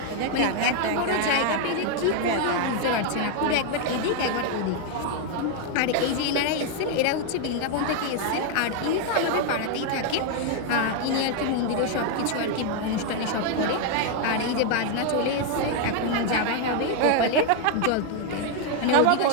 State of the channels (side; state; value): both; different; correlation 0.01